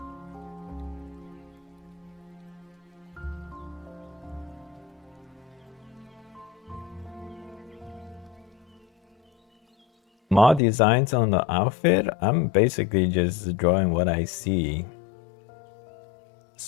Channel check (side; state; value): right; drops out; at 10.6 s